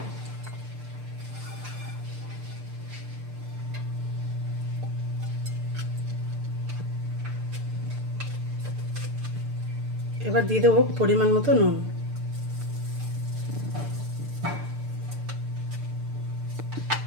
এবার দিয়ে দেবো পরিমাণ মতো নুন,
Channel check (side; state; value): left; late; 6.7 ms